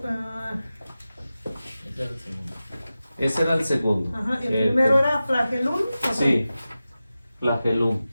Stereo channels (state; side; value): inverted; both; correlation -0.94